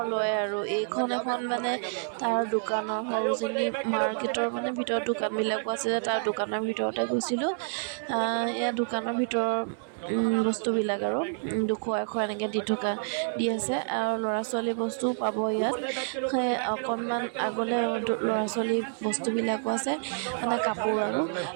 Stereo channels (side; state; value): left; silent; 59 dB below the other